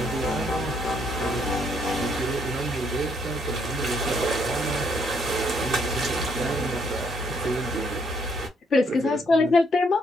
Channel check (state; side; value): normal; both; correlation 0.70